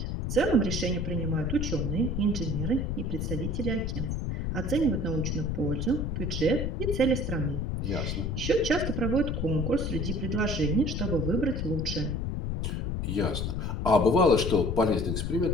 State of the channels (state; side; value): noise; left; rumble, 1 dB below the sound